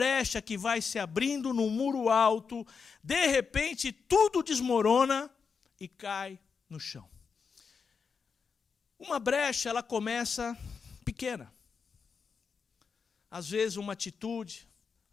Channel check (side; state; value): right; quieter; 5.7 dB